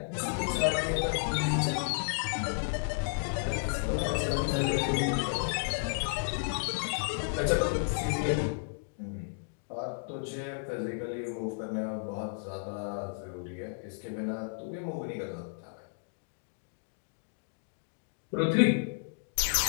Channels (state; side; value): silent; right; digital silence